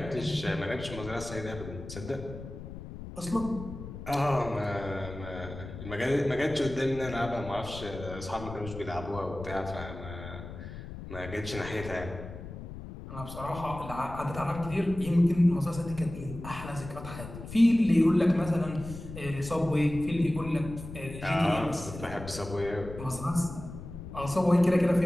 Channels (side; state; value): left; noise; rumble, 11 dB below the sound